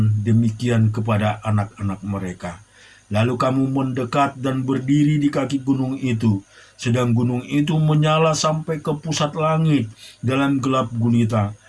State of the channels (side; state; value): both; identical; correlation 1.00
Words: demikian kepada anak-anak mereka. Lalu kamu mendekat dan berdiri di kaki gunung itu, sedang gunung itu menyala sampai ke pusat langit dalam gelap gulita,